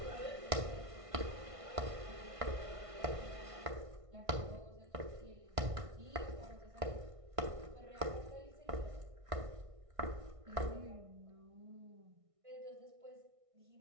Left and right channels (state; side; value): late; left; 1.6 ms